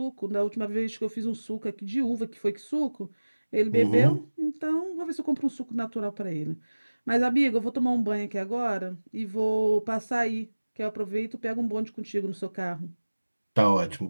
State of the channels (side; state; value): both; inverted; correlation -1.00